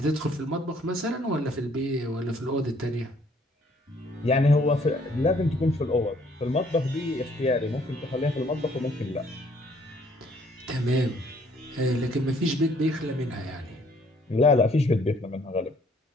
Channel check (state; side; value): normal; both; correlation 0.62